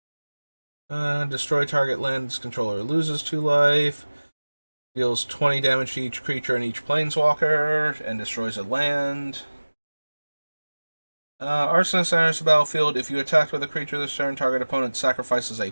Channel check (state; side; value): inverted; both; correlation -1.00